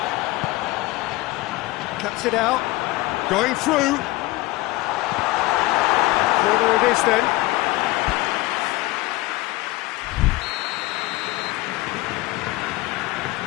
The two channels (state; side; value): quieter; right; 19.7 dB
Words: Cuts it out. Going through. Corner it is then.